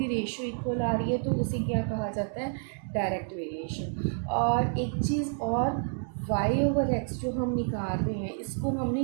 रेशियो इक्वल आ रही है, तो उसे क्या कहा जाता है, डायरेक्ट वेरिएशन। और एक चीज़ और, y ओवर x जो हम निकाल रहे हैं इसको हमने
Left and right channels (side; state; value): left; silent; 58 dB below the other